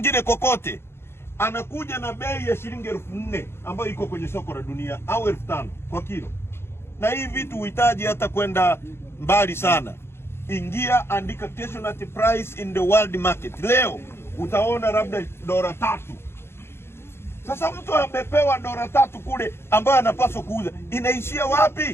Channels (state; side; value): late; right; 0.12 ms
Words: kokote, anakuja na bei ya shilingi 4000 ambayo iko kwenye soko la dunia, au 5000 kwa kilo. Na hii vitu uhitaji hata kwenda mbali sana. Ingia, andika casualty price in the world market. Leo utaona labda $3. Sasa mtu amepewa $3 kule ambayo anapaswa kuuza, inaishia